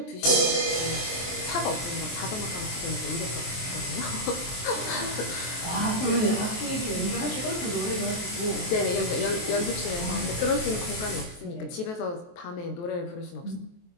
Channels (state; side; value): late; right; 23 ms